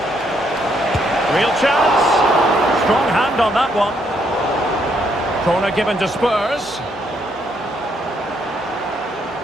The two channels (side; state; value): both; normal; correlation 0.73